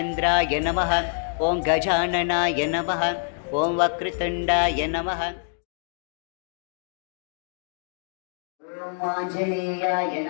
నమః, ఓం గజాననాయ నమః, ఓం వక్రతుండాయ నమః. ఓం ఆంజనేయాయ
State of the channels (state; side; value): silent; right; digital silence